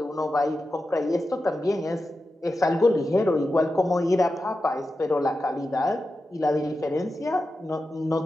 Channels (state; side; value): normal; both; correlation 0.91